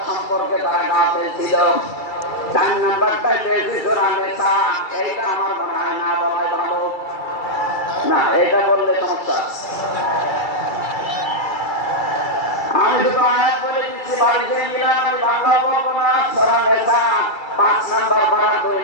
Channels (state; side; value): late; right; 2.3 ms